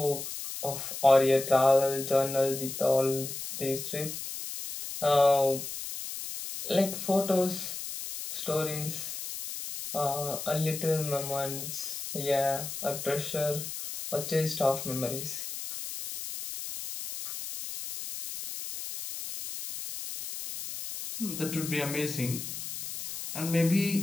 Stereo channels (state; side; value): noise; left; hiss, 7 dB below the sound